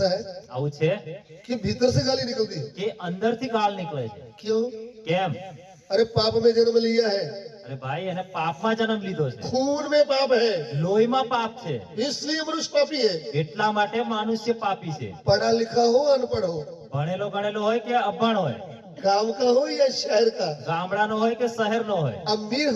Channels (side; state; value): both; identical; correlation 1.00